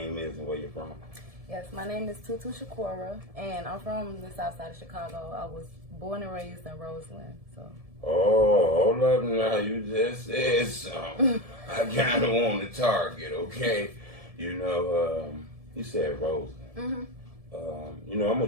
is and where you're from. Yes, my name is Tutu Shakura, and I'm from the south side of Chicago. I was born and raised in Roseland, so. Oh, hold up now, you just said something. I kind of want to target, okay? You know, you said Roseland. Mm-hmm. You know, I'm a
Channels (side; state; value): left; late; 1.7 ms